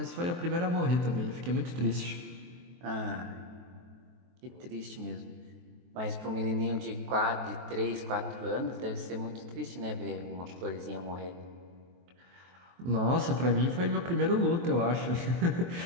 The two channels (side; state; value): left; late; 23 ms